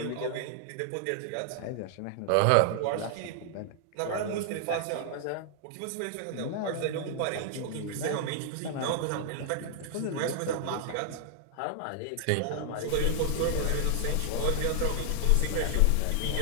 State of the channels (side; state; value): both; different; correlation -0.01